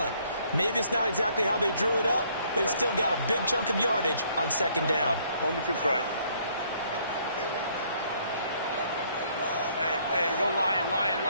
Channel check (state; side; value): inverted; both; correlation -0.65